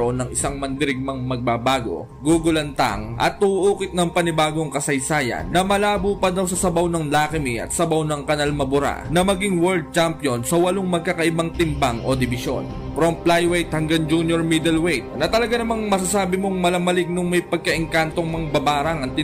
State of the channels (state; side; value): identical; both; correlation 1.00